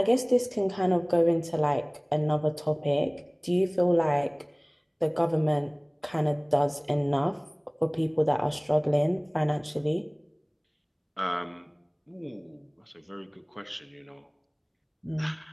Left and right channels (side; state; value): both; identical; correlation 1.00